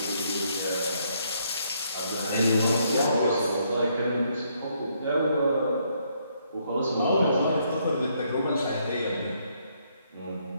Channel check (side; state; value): both; inverted; correlation -0.72